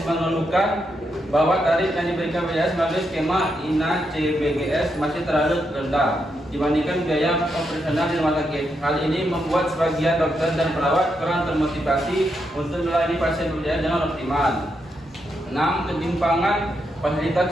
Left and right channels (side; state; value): both; normal; correlation 0.82